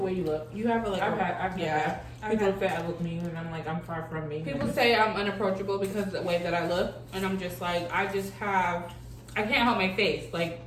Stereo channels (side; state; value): both; identical; correlation 1.00